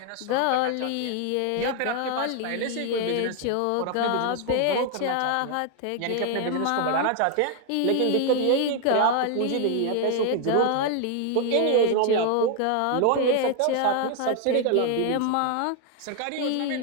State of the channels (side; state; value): both; different; correlation 0.00